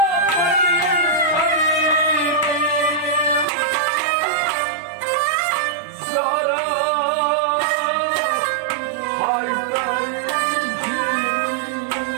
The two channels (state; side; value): drops out; left; at 3.5 s